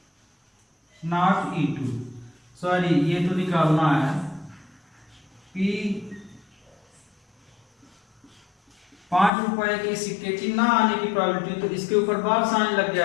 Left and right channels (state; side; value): drops out; right; at 9.3 s